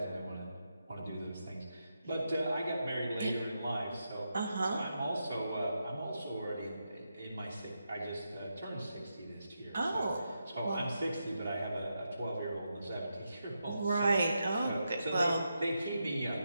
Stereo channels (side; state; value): both; inverted; correlation -0.86